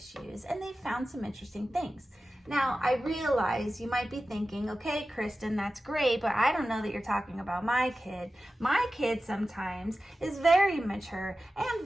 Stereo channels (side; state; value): both; normal; correlation 0.94